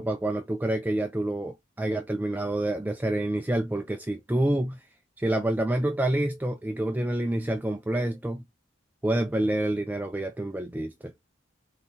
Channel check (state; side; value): normal; both; correlation 0.90